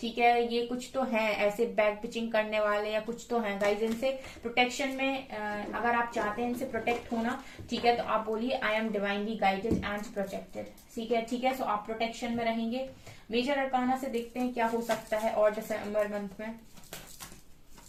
ठीक है, ये कुछ तो हैं ऐसे बैक पिचिंग करने वाले या कुछ तो हैं गाइस। इनसे प्रोटेक्शन में अगर आप चाहते हैं इनसे प्रोटेक्ट होना, ठीक है, तो आप बोलिए I am divinely guided and protected. ठीक है, ठीक है, सो आप प्रोटेक्शन में रहेंगे। मेजर अरकाना से देखते हैं क्या हो सकता है और दिसंबर मंथ में।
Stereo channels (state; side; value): identical; both; correlation 1.00